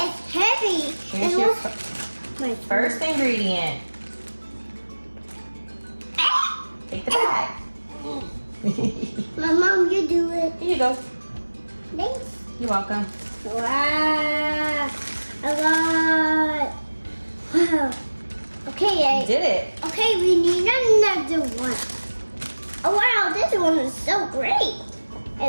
heavy. Here's And your what's my first ingredient. Take the bag. My mom, you do it. Here you go. Thanks. You're welcome. Wow, a lot. Wow. Okay, You did it. okay, we need another one. Oh wow, this one is so great.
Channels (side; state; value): both; inverted; correlation -1.00